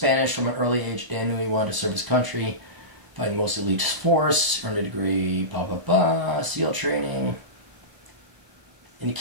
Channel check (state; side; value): late; left; 1.0 ms